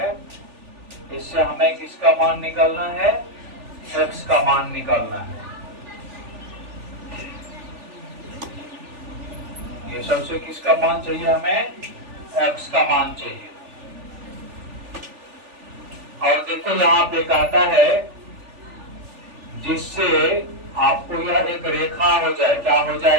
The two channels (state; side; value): late; left; 3.4 ms